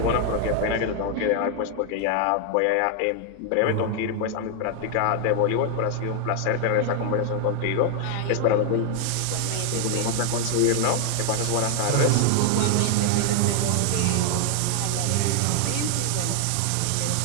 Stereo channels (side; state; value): both; different; correlation 0.00